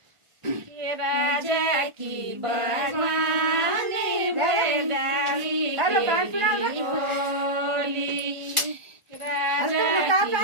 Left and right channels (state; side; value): late; left; 1.4 ms